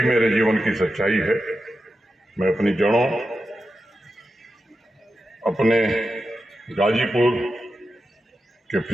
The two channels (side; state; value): both; normal; correlation 0.90